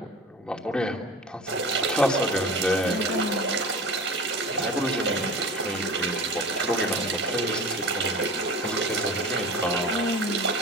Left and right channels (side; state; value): both; normal; correlation 0.35